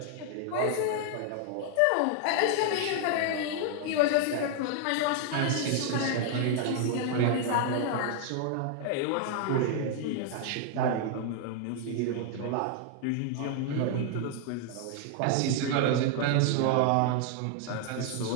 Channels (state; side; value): different; both; correlation 0.00